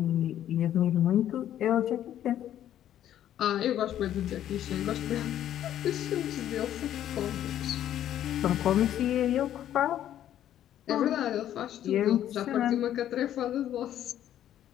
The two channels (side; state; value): right; quieter; 11.4 dB